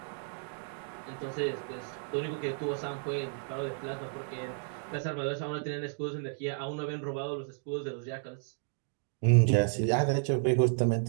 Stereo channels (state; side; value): silent; left; digital silence